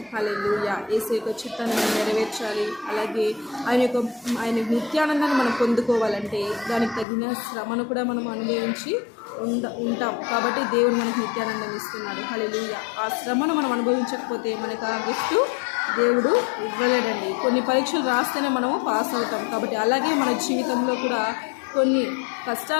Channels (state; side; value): drops out; right; at 7.1 s